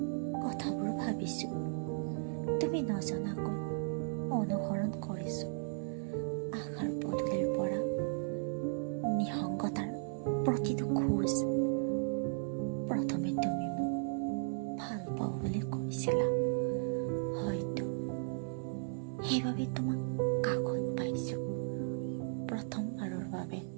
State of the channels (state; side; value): silent; left; 54 dB below the other